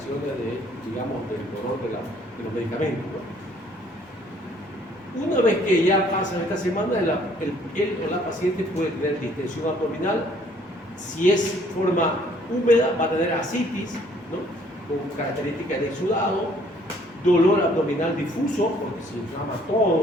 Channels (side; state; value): both; normal; correlation 0.61